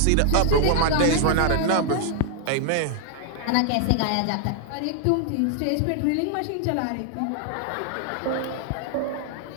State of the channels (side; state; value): both; different; correlation 0.00